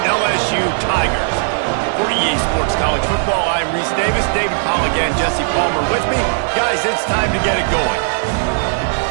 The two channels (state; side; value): silent; left; digital silence